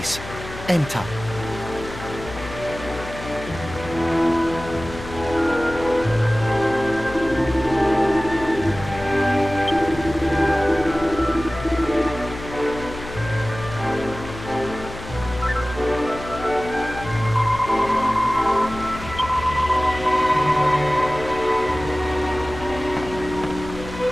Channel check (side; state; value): left; noise; hum, 12 dB below the sound